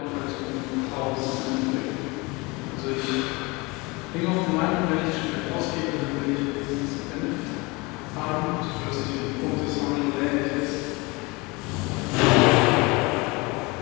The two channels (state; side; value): quieter; right; 25.5 dB